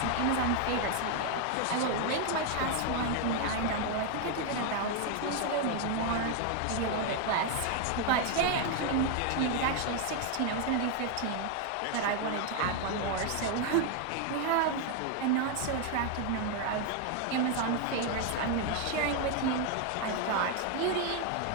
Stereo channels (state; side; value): different; both; correlation 0.01